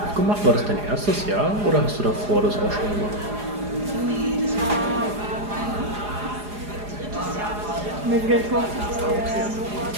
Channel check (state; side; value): late; left; 4.8 ms